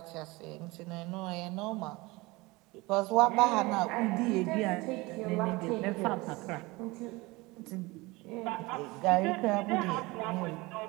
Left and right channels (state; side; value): quieter; left; 22.8 dB